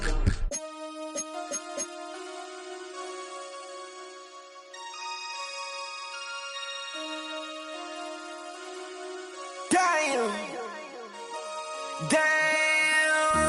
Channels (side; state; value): both; identical; correlation 1.00